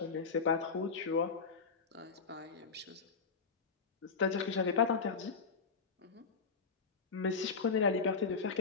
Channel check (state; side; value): quieter; right; 5.1 dB